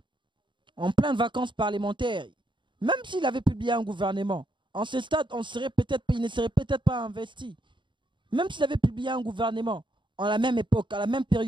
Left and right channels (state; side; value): late; left; 0.23 ms